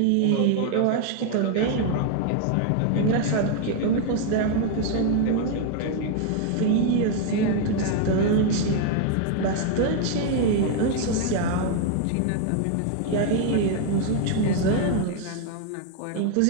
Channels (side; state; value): both; different; correlation 0.01